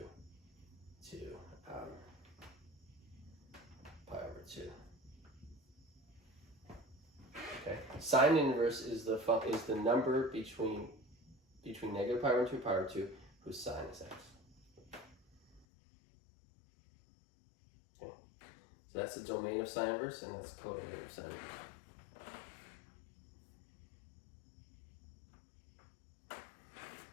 to pi over 2. Okay, sine inverse is the number between negative pi over 2 and pi over 2 whose sine is x. Okay, so that's the domain of sine inverse, and that's codomain of sine inverse.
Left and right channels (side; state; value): right; drops out; at 15.7 s